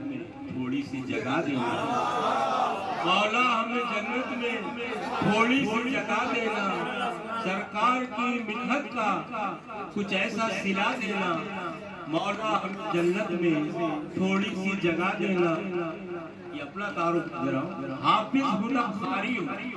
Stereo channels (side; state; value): both; identical; correlation 1.00